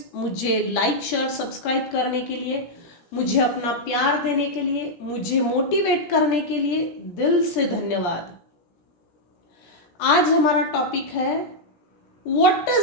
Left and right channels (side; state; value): right; late; 17 ms